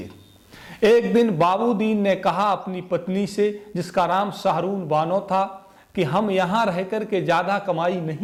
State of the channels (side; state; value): both; identical; correlation 1.00